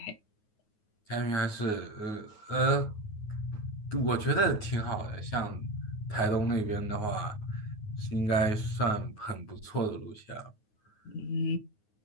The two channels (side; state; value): right; late; 9.5 ms